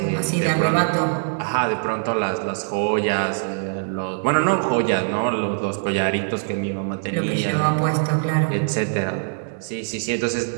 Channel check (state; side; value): silent; left; digital silence